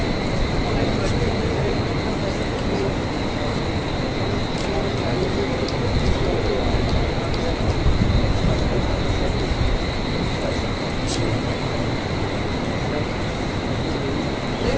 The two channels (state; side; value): identical; both; correlation 1.00